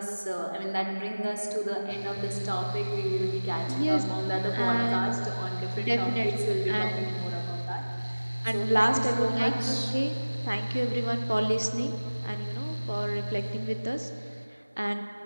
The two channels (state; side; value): inverted; both; correlation -1.00